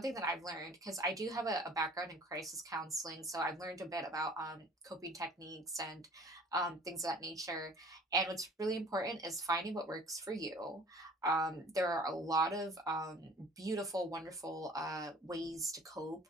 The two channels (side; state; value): both; normal; correlation 0.49